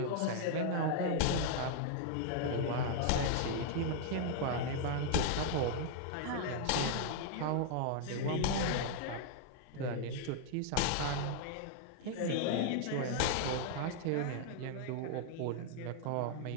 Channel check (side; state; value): both; different; correlation -0.01